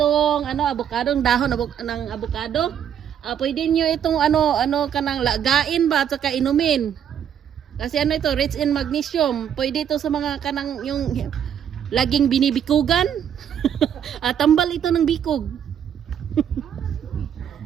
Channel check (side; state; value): left; quieter; 9.0 dB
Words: avocado, dahon ng avocado? Pwede nyo itong kanang lagain ba at saka inumin. Kasi ito, rich in magnesium. Pwede ito sa mga kanang yung laging binibikugan. Tambal ito ng bikog.